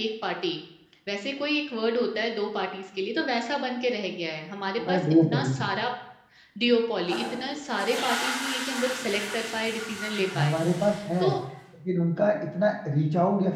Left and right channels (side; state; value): both; identical; correlation 1.00